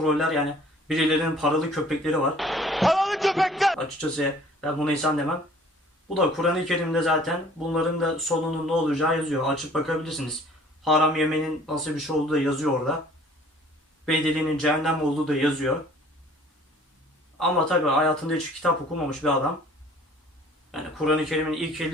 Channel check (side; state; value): both; normal; correlation 0.53